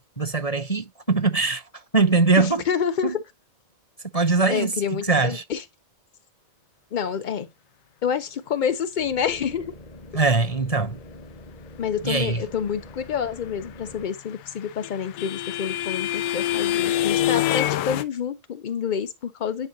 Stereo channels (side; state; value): right; late; 1.7 ms